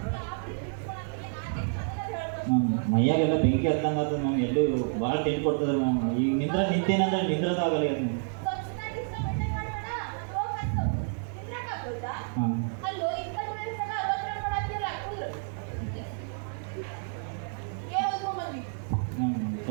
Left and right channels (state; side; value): silent; left; 58 dB below the other